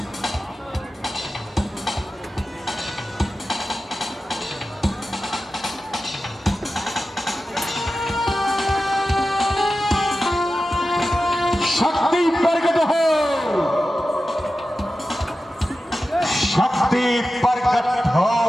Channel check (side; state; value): both; normal; correlation 0.93